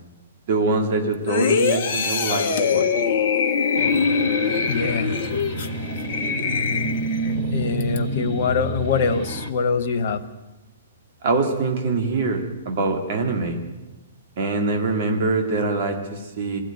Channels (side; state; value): both; inverted; correlation -0.43